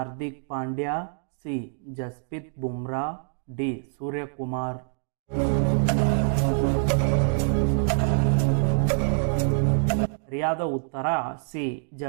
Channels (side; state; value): left; silent; 61 dB below the other